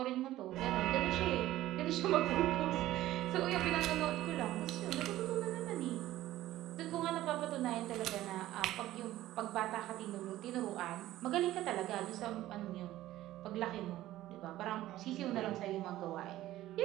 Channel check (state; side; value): quieter; left; 15.0 dB